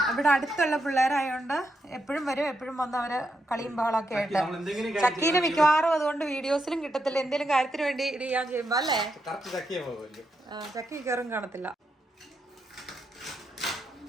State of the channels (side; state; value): both; normal; correlation 0.82